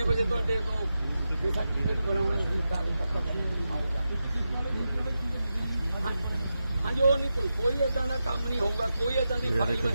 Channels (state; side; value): inverted; both; correlation -0.90